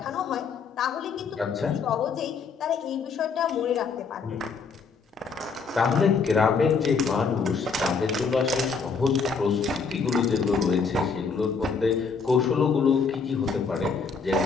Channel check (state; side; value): quieter; right; 5.2 dB